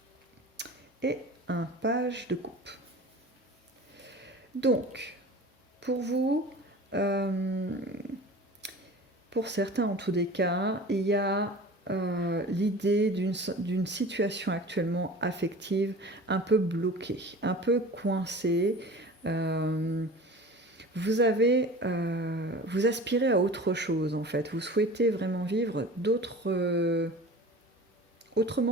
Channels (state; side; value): normal; both; correlation 0.39